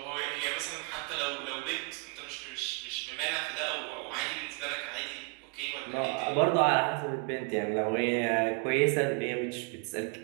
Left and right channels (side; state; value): left; quieter; 31.5 dB